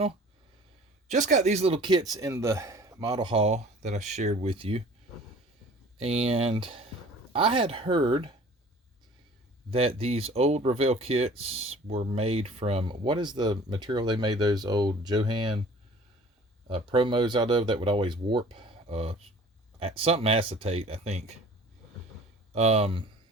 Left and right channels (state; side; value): normal; both; correlation 0.48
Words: Just got these little kits in the model haul that I shared with you. And I had heard that these old Revell kits were made from, what is the material they made those old Johan promos out of that would always warp? Something acetate, I think. So